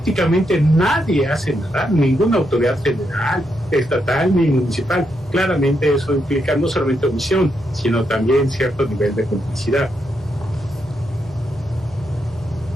nadie hace nada, ninguna autoridad federal, estatal ni municipal, claramente eso implica no solamente omisión, sino también cierto nivel de complicidad.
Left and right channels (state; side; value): noise; left; hum, 22 dB below the sound